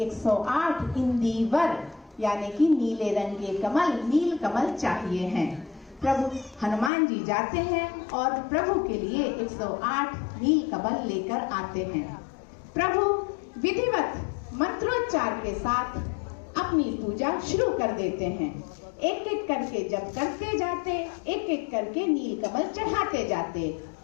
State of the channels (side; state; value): right; drops out; at 6.9 s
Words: इंदीवर यानी कि नीले रंग के कमल, नील कमल चाहिए हैं। प्रभु हनुमान जी जाते हैं और प्रभु के लिए 108 नील कमल लेकर आते हैं। प्रभु विधिवत मंत्रोच्चार के साथ अपनी पूजा शुरू कर देते हैं। एक एक करके जब करते जाते, एक एक करके नील कमल चढ़ाते जाते।